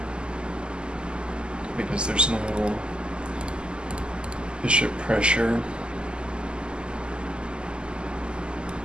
because there's no bishop pressure.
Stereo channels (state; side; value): late; left; 0.049 ms